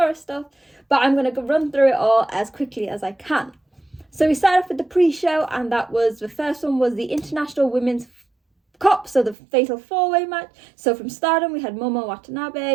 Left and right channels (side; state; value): left; drops out; at 9.3 s